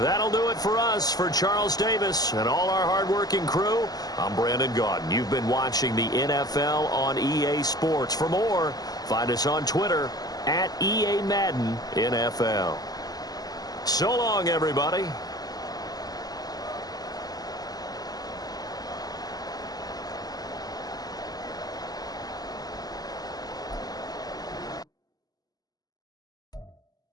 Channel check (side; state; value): right; late; 0.18 ms